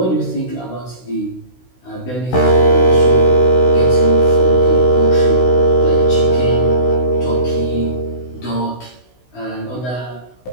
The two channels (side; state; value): right; late; 16 ms